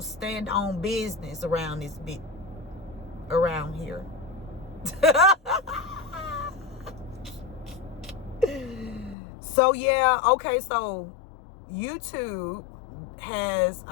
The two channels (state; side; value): drops out; right; at 9.2 s